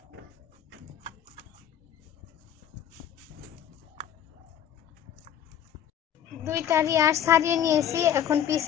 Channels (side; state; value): right; quieter; 9.8 dB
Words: দুইটারই আঁশ ছাড়িয়ে নিয়েছি, এখন পিস